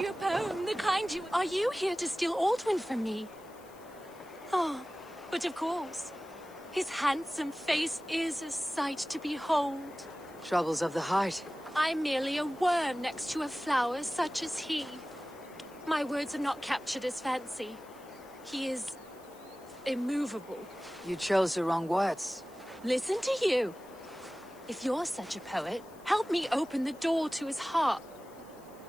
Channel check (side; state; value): left; noise; hiss, 25 dB below the sound